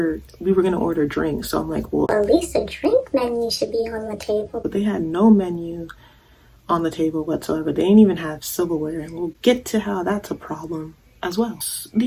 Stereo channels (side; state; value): both; identical; correlation 1.00